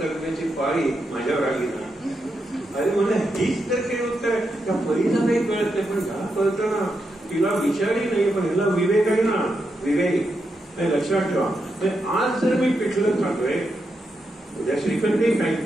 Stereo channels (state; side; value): normal; both; correlation 0.84